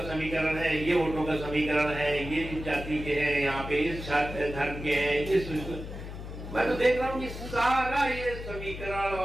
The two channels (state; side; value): noise; left; hum, 9 dB below the sound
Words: समीकरण है, ये वोटों का समीकरण है, ये इस जाति के हैं, यहाँ पे इस धर्म के हैं, इस। मैं तो देख रहा हूँ कि सारा ये समीकरण